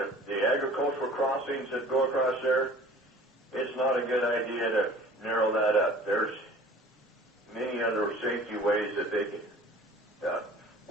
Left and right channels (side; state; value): both; normal; correlation 0.47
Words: the agricultural crossings that go across there, it's not a good idea to narrow that up. There's many other safety ways that they can,